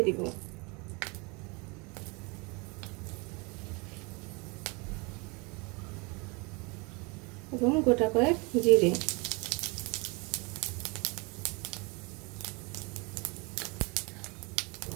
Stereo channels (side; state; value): left; quieter; 29.3 dB